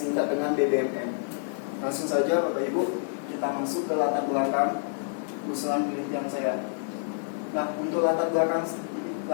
dengan BBMN. Langsung saja Bapak Ibu, kita masuk ke latar belakang usulan penelitian saya. Nah, untuk latar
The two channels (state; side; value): silent; right; digital silence